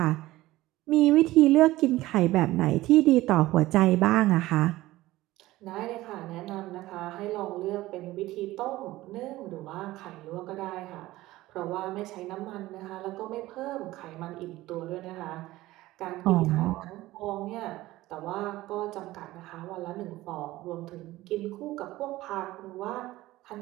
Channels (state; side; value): quieter; left; 17.3 dB